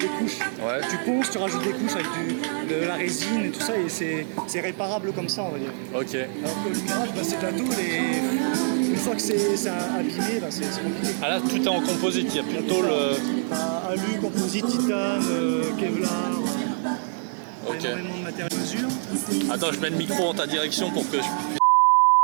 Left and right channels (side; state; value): left; silent; digital silence